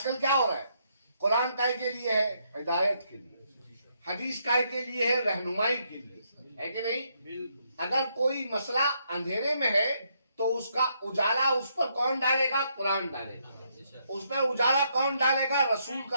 क्या हो रहा है? कुरान काय के लिए है? हिदायत के लिए। हदीस काय के लिए है? रहनुमाई के लिए, है कि नहीं? अगर कोई मसला अंधेरे में है तो उसका उजाला उस पर कौन डालेगा? कुरान डालेगा। उस पर उजाला कौन डालेगा? रसूल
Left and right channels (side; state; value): both; inverted; correlation -0.75